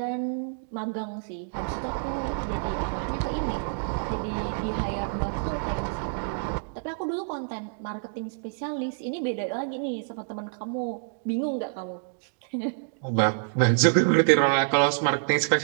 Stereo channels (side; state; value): left; silent; digital silence